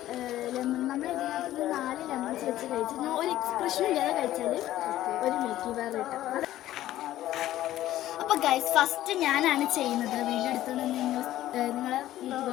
ലെമൺ, നമ്മൾ ഇതിനകത്ത് 4 ലെമൺസ് വെച്ച് കഴിച്ച് ഒരു എക്സ്പ്രഷൻ ഇല്ലാതെ കഴിച്ചാൽ ഒരു മിൽക്കി ബാർ കിട്ടും. അപ്പോൾ ഗൈസ്, ഫസ്റ്റ് ഞാനാണ് ചെയ്യുന്നത്. വീഡിയോ എടുത്തുകൊണ്ട് നിങ്ങളെ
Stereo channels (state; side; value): quieter; right; 14.0 dB